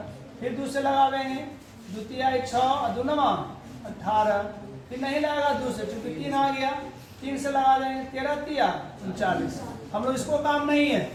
फिर 2 से लगावेंगे, 2 3 6 2 9 18। फिर नहीं लगेगा 2 से, चूंकि 3 आ गया। 3 से लगा देंगे, 13 3 39। हम लोग इसको काम नहीं है,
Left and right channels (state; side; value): identical; both; correlation 1.00